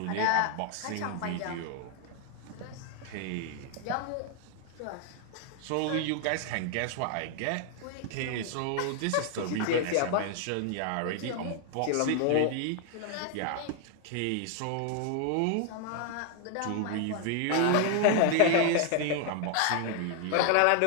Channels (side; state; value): both; different; correlation 0.00